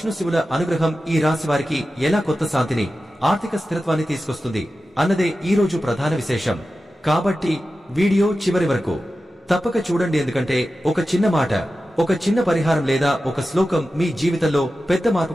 శివుల అనుగ్రహం ఈ రాశి వారికి ఎలా కొత్త శాంతిని, ఆర్థిక స్థిరత్వాన్ని తీసుకొస్తుంది అన్నదే ఈ రోజు ప్రధాన విశేషం. కాబట్టి వీడియో చివరి వరకు తప్పక చూడండి. ఎందుకంటే ఒక చిన్న మాట, ఒక చిన్న పరిహారం లేదా ఒక శ్లోకం మీ జీవితంలో పెద్ద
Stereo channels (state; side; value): normal; both; correlation 0.93